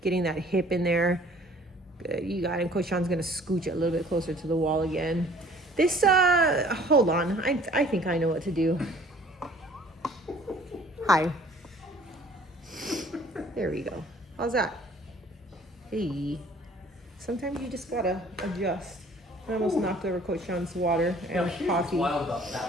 getting that hip in there. Good, you got it. Coach Sean's gonna scooch it a little bit closer to the wall again. This, hold on. I think I know what to do. Hi. There we go. How's that? Hey. Sometimes you just gotta adjust. I almost knocked over Coach Sean's water Now, and here's coffee. what's wild about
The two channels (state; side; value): normal; both; correlation 0.54